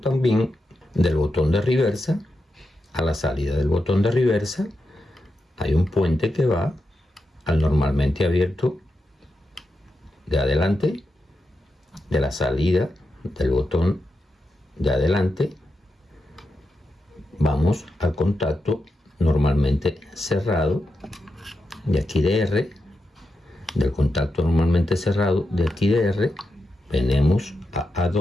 del botón de reversa. A la salida del botón de reversa hay un puente que va al normalmente abierto de adelante, de la salida del botón de adelante vamos al contacto normalmente cerrado de aquí de R, del contacto normalmente cerrado de aquí de R venimos a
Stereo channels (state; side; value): normal; both; correlation 0.87